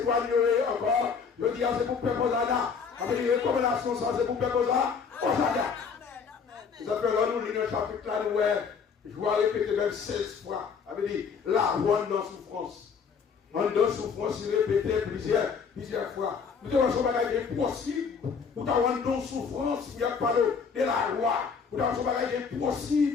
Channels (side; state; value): right; quieter; 6.0 dB